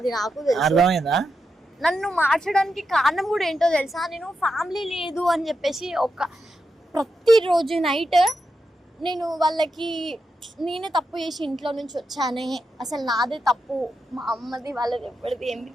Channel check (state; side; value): normal; both; correlation 0.86